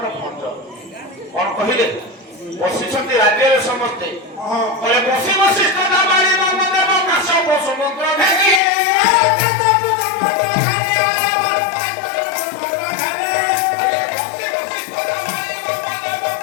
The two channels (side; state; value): right; drops out; at 8.6 s